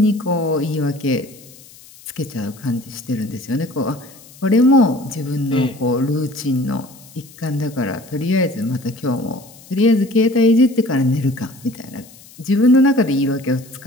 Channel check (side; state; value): left; noise; hiss, 22 dB below the sound